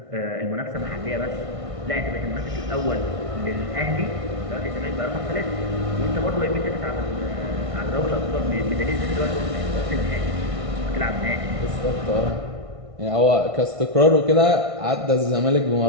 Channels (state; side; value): late; left; 1.6 ms